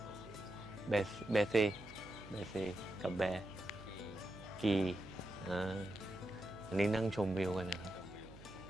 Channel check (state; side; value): noise; right; hum, 17 dB below the sound